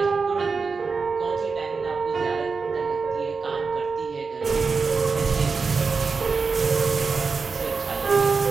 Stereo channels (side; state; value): left; quieter; 4.8 dB